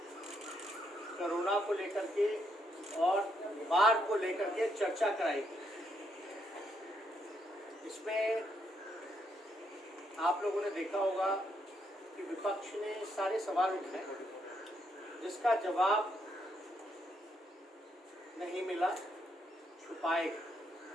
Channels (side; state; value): both; normal; correlation 0.76